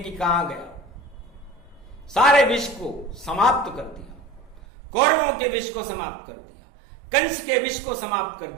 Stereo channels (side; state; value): left; drops out; at 4.6 s